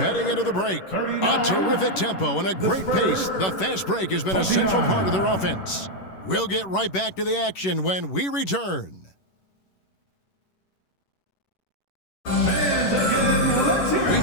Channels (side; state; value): right; late; 11 ms